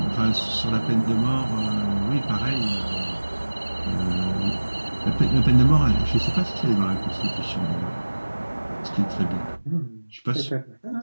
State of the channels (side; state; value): both; inverted; correlation -1.00